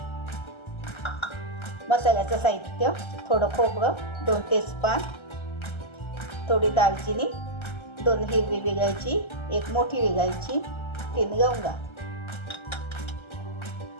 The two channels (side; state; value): right; late; 1.3 ms